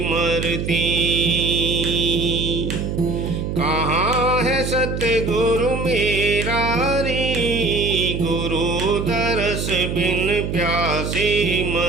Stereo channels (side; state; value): right; noise; hum, 3 dB below the sound